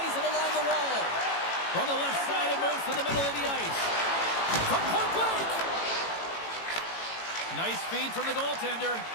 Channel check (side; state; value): right; late; 18 ms